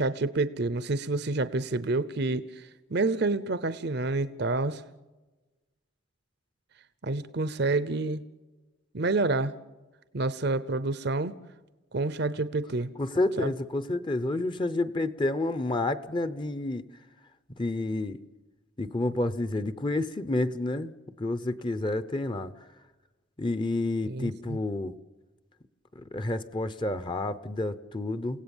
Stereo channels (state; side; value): normal; both; correlation 0.49